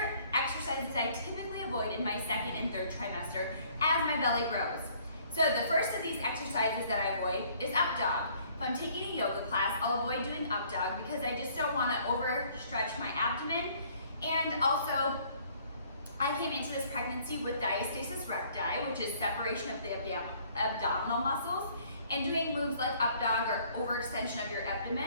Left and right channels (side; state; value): both; inverted; correlation -0.60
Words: exercises I typically avoid in my 2nd and 3rd trimester as my belly grows. So the first of these exercises that I avoid is up dog. If I'm taking a yoga class, I'll avoid doing up dog because I just don't want to overstretch my abdomen. And also, I came into this pregnancy with Diastasis Recti, which is separation of the abdominal muscles. And doing moves like up dog or overextension of your